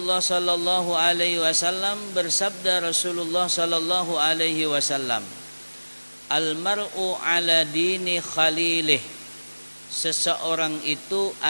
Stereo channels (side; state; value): both; inverted; correlation -1.00